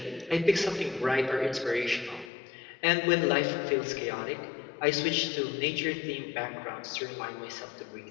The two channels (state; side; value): drops out; right; at 2.3 s